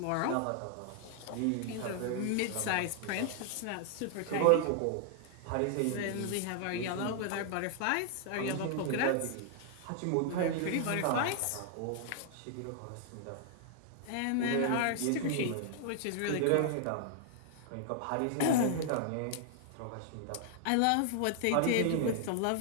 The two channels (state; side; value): different; both; correlation 0.00